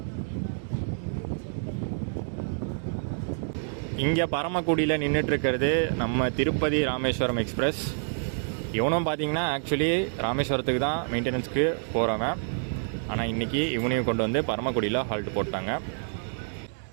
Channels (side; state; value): left; silent; digital silence